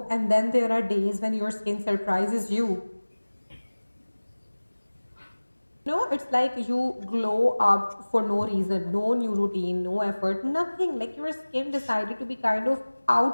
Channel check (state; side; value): inverted; both; correlation -1.00